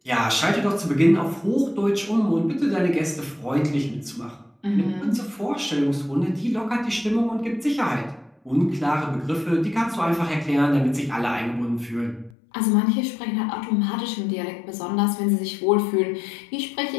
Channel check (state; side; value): drops out; right; at 12.4 s